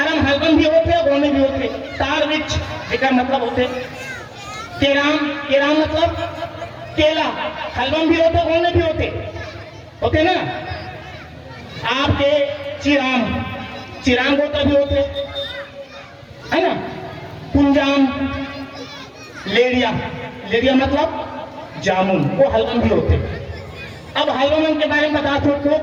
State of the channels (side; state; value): both; identical; correlation 1.00